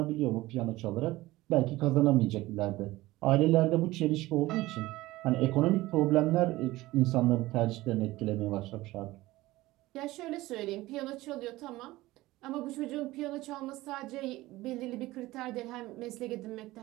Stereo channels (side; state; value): left; quieter; 18.3 dB